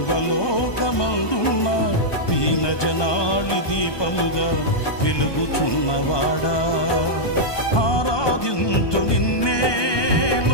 దీన జనాళి దీపముగా వెలుగుచున్నవాడా ఆరాధింతు నిన్నే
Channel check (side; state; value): right; late; 1.2 ms